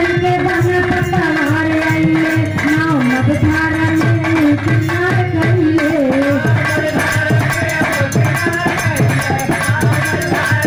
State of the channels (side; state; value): both; identical; correlation 1.00